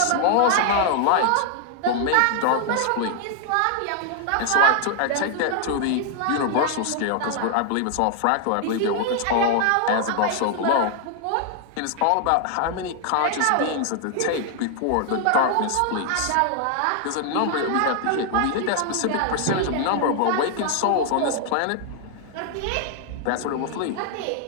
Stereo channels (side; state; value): both; different; correlation 0.00